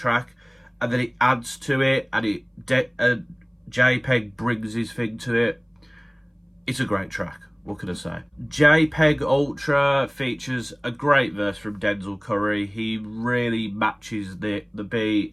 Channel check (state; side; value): identical; both; correlation 1.00